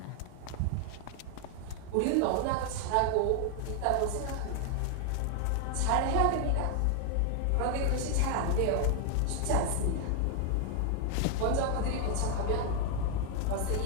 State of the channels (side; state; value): both; different; correlation 0.00